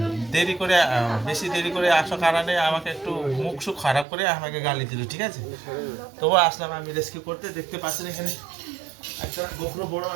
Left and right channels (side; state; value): left; drops out; at 4.0 s